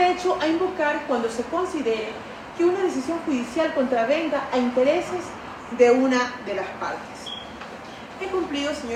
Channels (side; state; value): both; identical; correlation 1.00